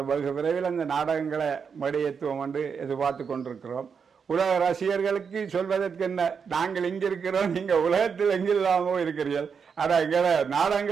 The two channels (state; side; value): quieter; left; 6.2 dB